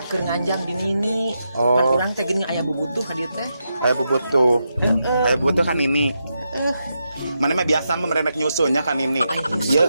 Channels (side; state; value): both; inverted; correlation -0.85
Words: Keur nganjang di nini. Oh. Pan urang teh geuning aya bubutuh ka dieu teh. Aya bubutuh. Aya bubutuh kan ini. Mana mah biasa mah merenek nyusunya kan ini. Ieu